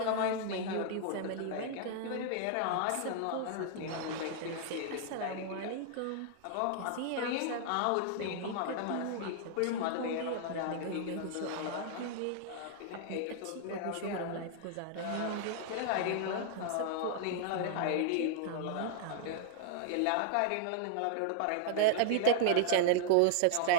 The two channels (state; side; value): different; both; correlation -0.01